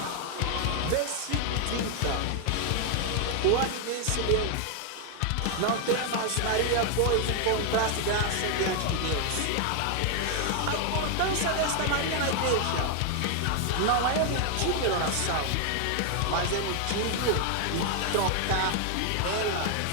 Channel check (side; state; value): both; different; correlation 0.00